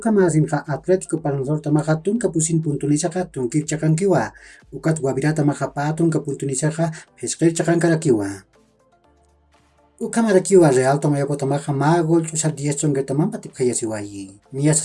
masinqa Atlético Palmaflor tamaqa tun kapusin puntunisaka tunkir chakankiwa. Ukat Guavirata maqa patun kapuntunisaka pesqir chakankarakiwa. Ukamarakiwa Real Tomayapo tamaqa ma gol chusar 10 chongertaman patip khayasiwayi. Nia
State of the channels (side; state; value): both; identical; correlation 1.00